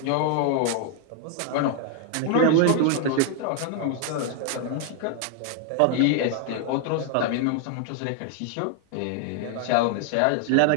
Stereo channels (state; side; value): different; both; correlation 0.00